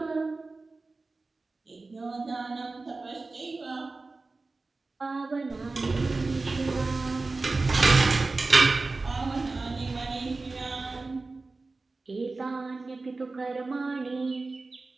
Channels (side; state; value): left; quieter; 3.6 dB